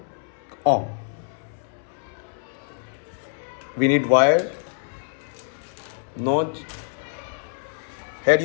ohm. We need wire, notch. Here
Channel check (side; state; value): right; silent; 59 dB below the other